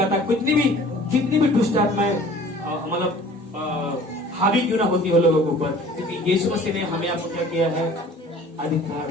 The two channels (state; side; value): normal; both; correlation 0.48